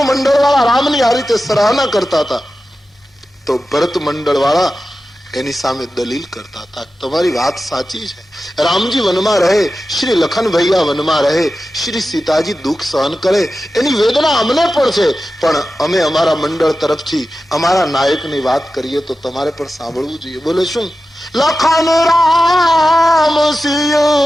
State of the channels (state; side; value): normal; both; correlation 0.93